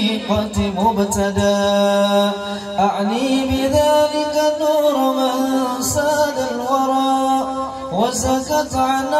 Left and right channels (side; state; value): both; identical; correlation 1.00